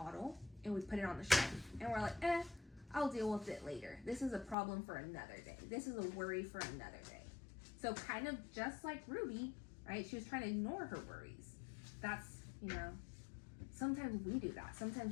and we put it on the shelf. And we're like, I'll deal with it later. This is a problem for another day. This is a worry for another day. So kind of just like Ruby, right? She was trying to ignore her worries. That's, you know, sometimes we do that.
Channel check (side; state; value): right; drops out; at 4.5 s